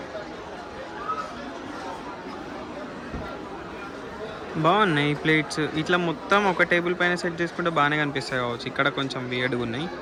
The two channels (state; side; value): identical; both; correlation 1.00